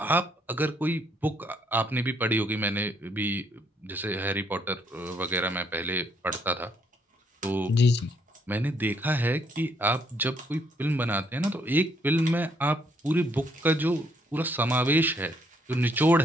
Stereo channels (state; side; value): normal; both; correlation 0.70